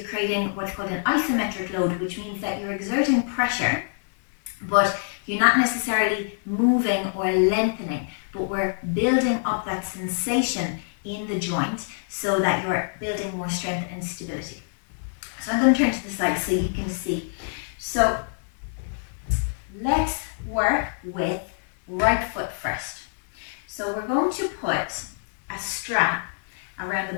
creating what's called an isometric load, which means that you're exerting pressure, but you're not necessarily moving or lengthening, but we're building up that sensation in the joint so that you're building more strength and stability. So I'm going to turn to the side so you can see. So let's work with right foot first. So we're going to put a strap around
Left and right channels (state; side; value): silent; right; 60 dB below the other